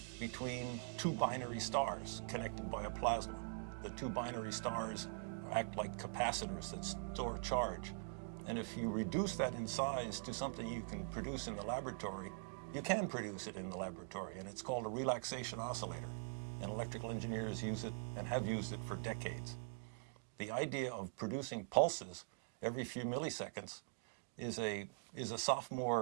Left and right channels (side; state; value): left; silent; digital silence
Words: between two binary stars connected by a plasma. The two binary stars act like capacitors that store charge. And if you reduce that in size to something you can produce in the laboratory, you can produce it in the laboratory, and it's called a relaxation oscillator. And electrical engineers use it and have used it for decades. The idea of producing pulses every few milliseconds is a